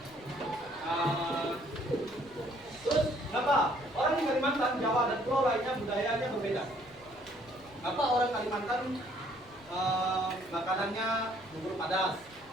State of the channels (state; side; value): noise; left; rumble, 25 dB below the sound